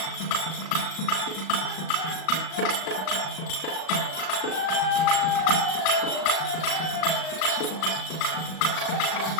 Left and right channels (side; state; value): right; late; 37 ms